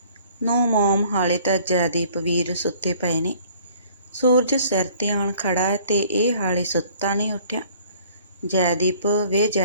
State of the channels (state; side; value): inverted; both; correlation -0.56